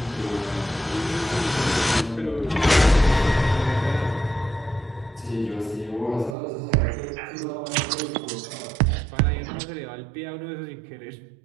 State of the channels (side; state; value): left; drops out; at 6.4 s